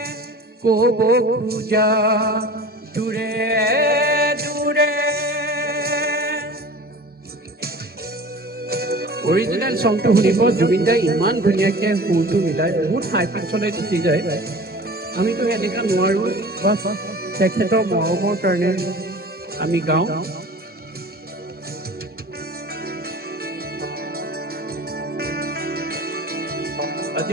ক'ব খোজা। দূৰে দূৰে অৰিজিনেল চংটো শুনিব। জুবিনদাই ইমান ধুনীয়াকৈ সুৰটো মিলাই বহুত হাই পিচলৈ গুচি যায়। আমিতো এনেকুৱা নোৱাৰোঁ, বাছ তেখেতৰ মৰমৰ কাৰণে আমি গাওঁ। আজি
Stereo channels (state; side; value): normal; both; correlation 0.40